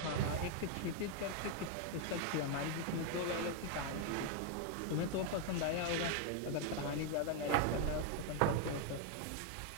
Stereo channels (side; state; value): both; different; correlation 0.00